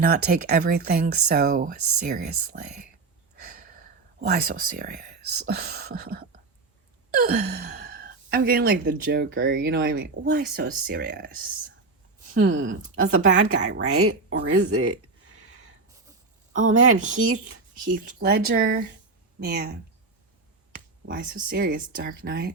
not take everything so seriously. Why so serious? I'm getting like the Joker, you know what I mean? Why so serious? That's the bad guy, right? Or is it? Oh man, Heath Ledger. Man, why so serious? Dark Knight.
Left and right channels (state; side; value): quieter; left; 3.9 dB